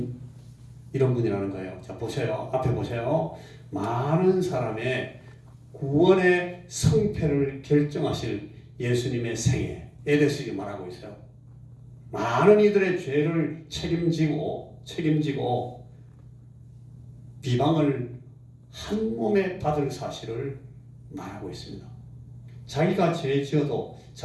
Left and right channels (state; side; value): identical; both; correlation 1.00